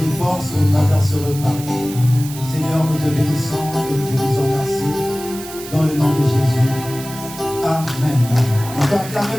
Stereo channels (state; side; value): noise; right; hiss, 13 dB below the sound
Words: forces au travers de ce repas. Seigneur, nous te bénissons et nous te disons merci. Dans le nom de Jésus. Amen. On peut